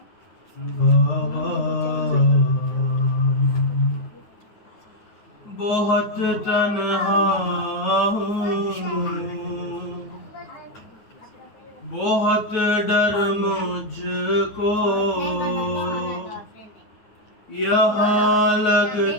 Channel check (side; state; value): right; late; 9.4 ms